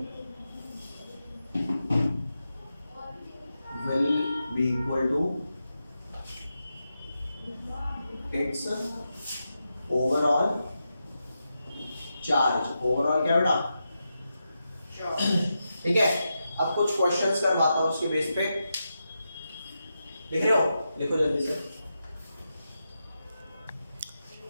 will be equal to its overall charge। Overall क्या बेटा? ठीक है, अब कुछ क्वेश्चंस करवाता हूं उसके बेस पे। लिख रहे हो? लिखो जल्दी से।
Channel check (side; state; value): both; inverted; correlation -0.88